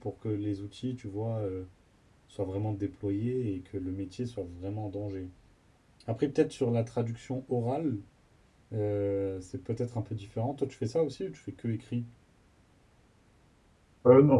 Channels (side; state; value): both; identical; correlation 1.00